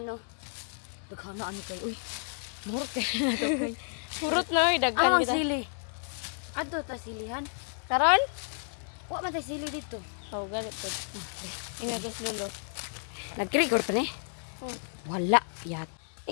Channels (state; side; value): silent; right; digital silence